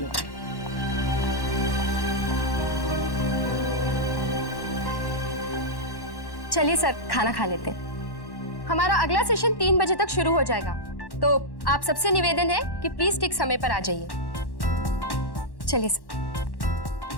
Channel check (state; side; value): late; right; 1.1 ms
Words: चलिए सर, खाना खा लेते हैं। हमारा अगला सेशन 3 बजे तक शुरू हो जाएगा। तो आप सबसे निवेदन है कि प्लीज ठीक समय पर आ जाइए। चलिए sir.